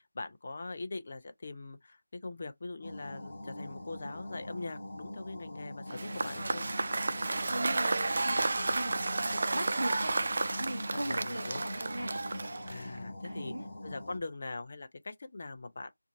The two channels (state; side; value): inverted; both; correlation -0.97